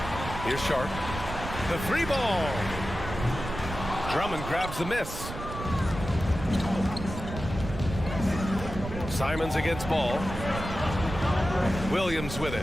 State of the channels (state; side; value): noise; right; rumble, 8 dB below the sound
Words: Here's Sharp. The 3 ball. Drummond grabs the miss. Simons against Ball. Williams with